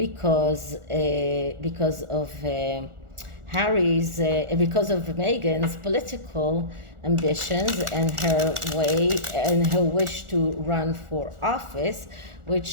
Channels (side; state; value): left; late; 1.4 ms